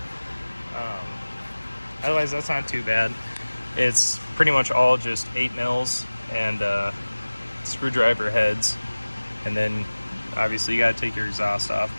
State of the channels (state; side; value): inverted; both; correlation -1.00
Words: Otherwise, that's not too bad. It's pretty much all just 8 mils and screwdriver heads. And then obviously you gotta take your exhaust